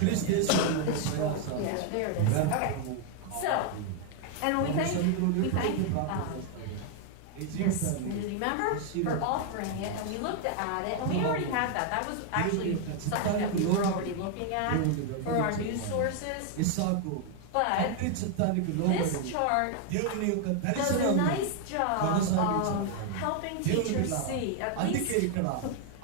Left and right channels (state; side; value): different; both; correlation 0.00